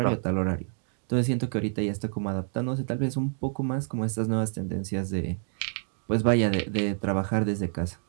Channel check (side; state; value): left; silent; 58 dB below the other